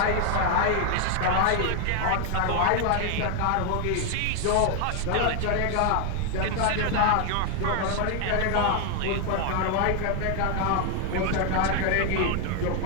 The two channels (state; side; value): different; both; correlation 0.01